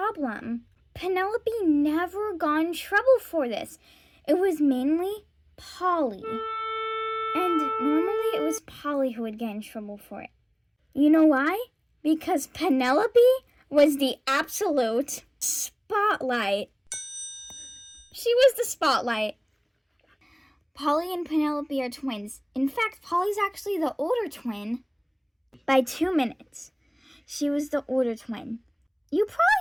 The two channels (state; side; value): identical; both; correlation 1.00